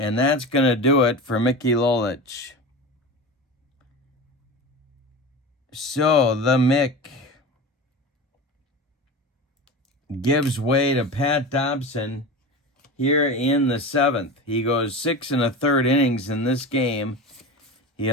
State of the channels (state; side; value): normal; both; correlation 0.29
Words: that's going to do it for Mickey Lolich. So the Mick gives way to Pat Dobson here in the 7th. He goes 6 1/3 innings in this game. He